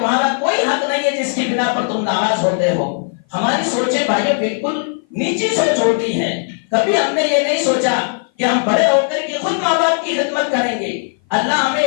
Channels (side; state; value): right; silent; 56 dB below the other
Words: کوئی حق نہیں ہے جس کی بنا پر تم ناراض ہوتے ہو۔ ہماری سوچیں بھائیوں بالکل نیچی سوچ ہوتی ہے۔ کبھی ہم نے یہ نہیں سوچا کہ ہم بڑے ہو کر کے خود ماں باپ کی خدمت کریں گے، اللہ ہمیں